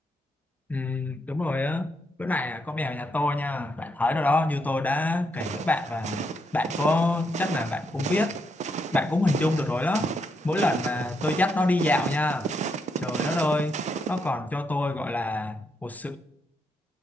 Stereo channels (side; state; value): both; normal; correlation 0.79